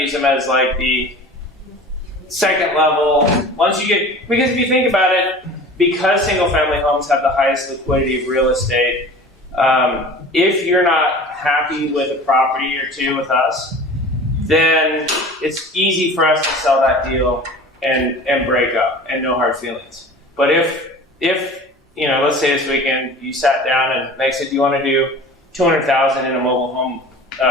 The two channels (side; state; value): both; normal; correlation 0.40